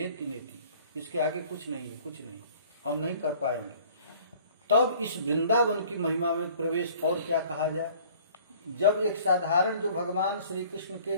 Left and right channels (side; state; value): both; inverted; correlation -0.52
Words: नेति, इसके आगे कुछ नहीं है, कुछ नहीं, हम नहीं कर पाएंगे। तब इस वृंदावन की महिमा में प्रवेश और क्या कहा जाए। जब एक साधारण जो भगवान श्री कृष्ण